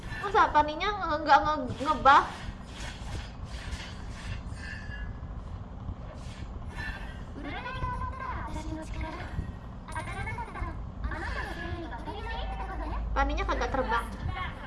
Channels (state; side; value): identical; both; correlation 1.00